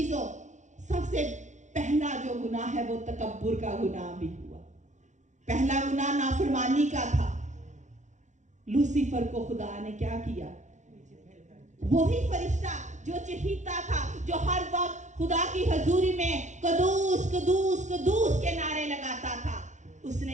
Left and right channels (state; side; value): late; left; 0.35 ms